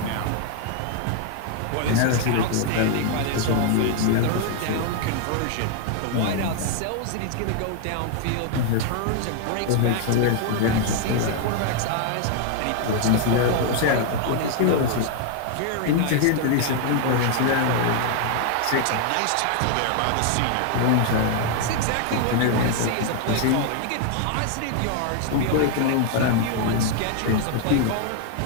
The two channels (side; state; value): both; different; correlation 0.00